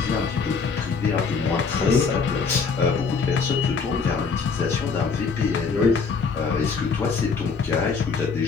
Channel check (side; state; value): right; quieter; 5.1 dB